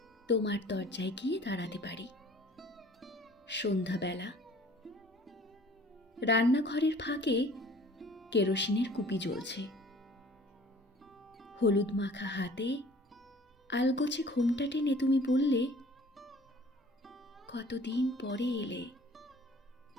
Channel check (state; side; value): normal; both; correlation 0.51